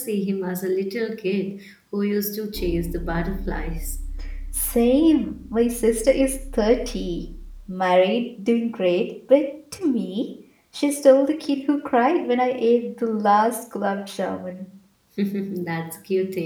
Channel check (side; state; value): both; identical; correlation 1.00